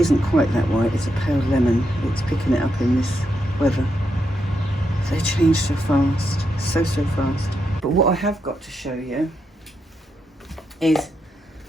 quite that white, it's a pale lemon. It's picking it up in this weather. They change so fast, so fast. But what I have got to show you is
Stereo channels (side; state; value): both; normal; correlation 0.82